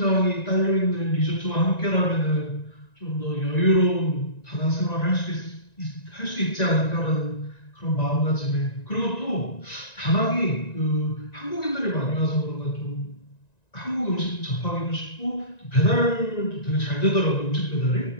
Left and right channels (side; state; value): right; late; 1.9 ms